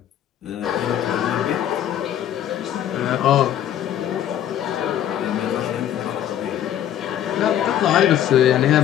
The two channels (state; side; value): quieter; right; 10.9 dB